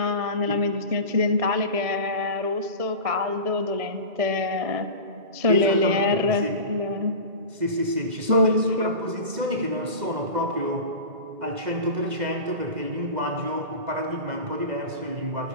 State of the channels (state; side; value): late; left; 2.0 ms